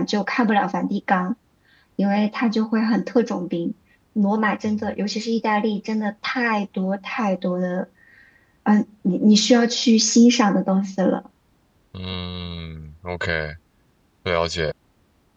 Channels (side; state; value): both; identical; correlation 1.00